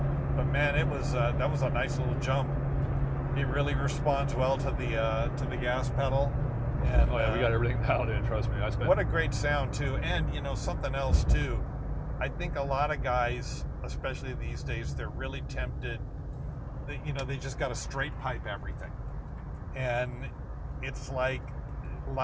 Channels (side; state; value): both; identical; correlation 1.00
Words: But man, it was that was a nice little jump. It really responds well to the gas pedal. And oh yeah, we got everything dialed in. Trust me. What a great sound too. And you know something else too. I think a lot of guys, especially these days, they're really tempted. They just got to straight pipe everything, and it's like